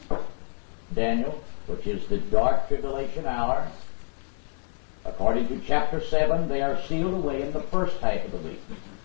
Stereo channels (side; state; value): right; silent; 60 dB below the other